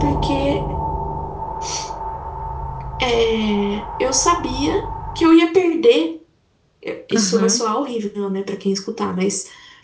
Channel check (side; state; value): both; identical; correlation 1.00